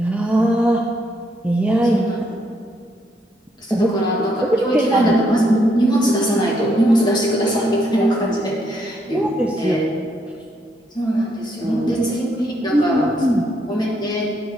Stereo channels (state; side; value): normal; both; correlation 0.74